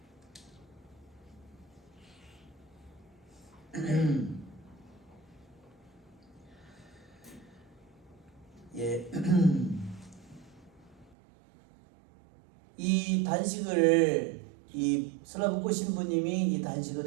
예. 이 단식을 이 슬라브코 신부님이 이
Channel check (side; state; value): left; drops out; at 11.2 s